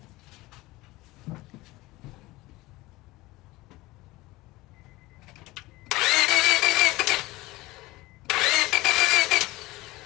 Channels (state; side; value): quieter; right; 19.9 dB